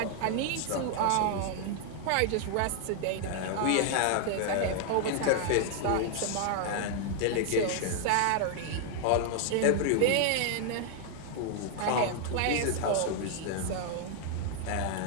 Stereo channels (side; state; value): both; different; correlation 0.00